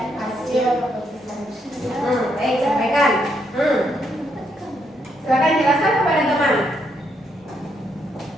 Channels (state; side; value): normal; both; correlation 0.76